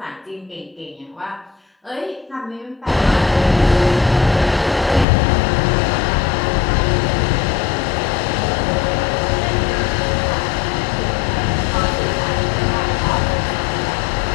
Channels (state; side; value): drops out; right; at 5.1 s